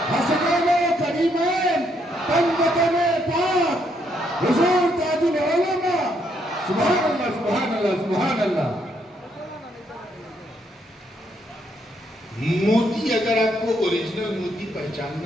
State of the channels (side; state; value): both; normal; correlation 0.74